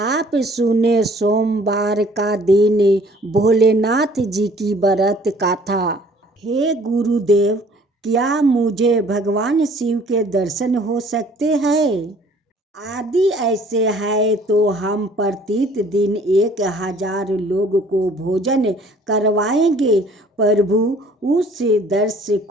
सुने सोमवार का दिन भोलेनाथ जी की व्रत कथा। हे गुरुदेव, क्या मुझे भगवान शिव के दर्शन हो सकते हैं? आदि ऐसे है तो हम प्रतिदिन 1000 लोग को भोजन करवाएंगे। प्रभु उस दृश्य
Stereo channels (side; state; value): both; normal; correlation 0.55